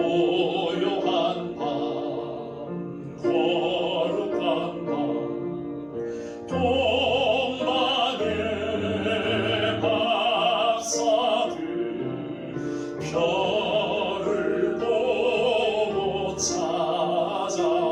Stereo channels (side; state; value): both; identical; correlation 1.00